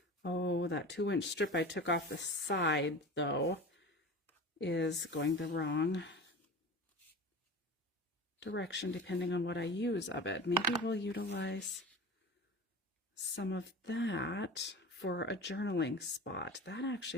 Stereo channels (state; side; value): normal; both; correlation 0.33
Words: oh, that 2-inch strip I took off the side though is going the wrong direction depending on what I use of it. Maybe we'll utilize some of that for a journaling spot. That actually